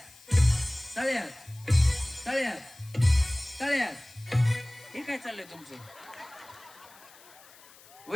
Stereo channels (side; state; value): left; noise; hiss, 23 dB below the sound